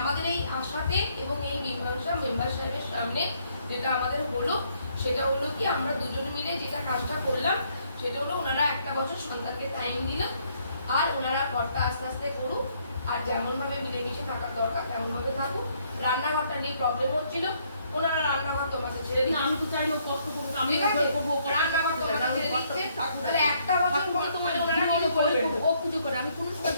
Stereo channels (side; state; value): both; inverted; correlation -0.69